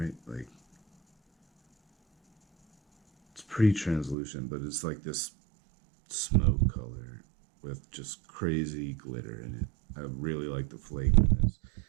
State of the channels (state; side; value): drops out; left; at 4.2 s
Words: Like, it's pretty translucent, but it's like this smoke color with just crazy glitter in it. I really like the flake in this.